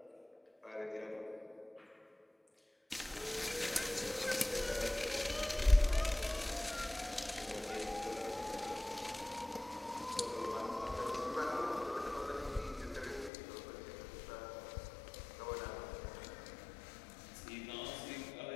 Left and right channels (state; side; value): drops out; right; at 13.3 s